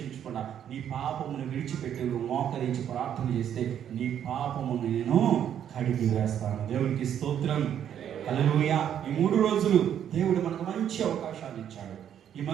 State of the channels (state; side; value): quieter; left; 9.6 dB